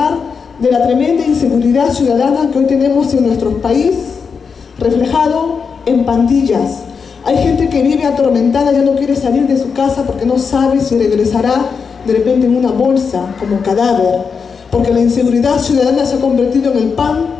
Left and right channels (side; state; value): right; quieter; 5.7 dB